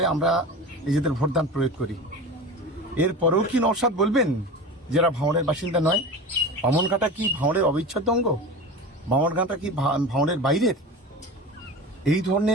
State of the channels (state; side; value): normal; both; correlation 0.31